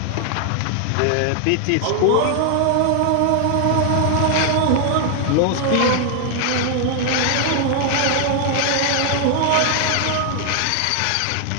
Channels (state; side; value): different; both; correlation 0.00